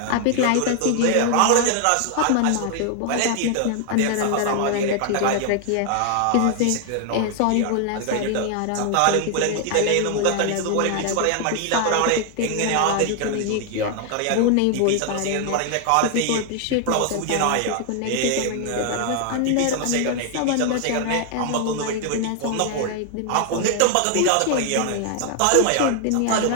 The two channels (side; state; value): both; different; correlation 0.00